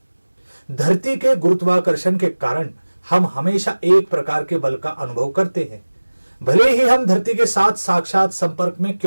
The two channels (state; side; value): inverted; both; correlation -1.00